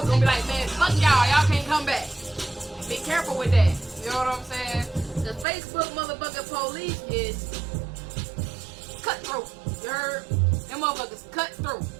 be like, man, fuck y'all can't come back. Be careful with that. You know what I'm saying? The Facebook motherfucking police is cutthroat. You heard? Them motherfuckers cutthroat.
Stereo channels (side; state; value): left; drops out; at 5.5 s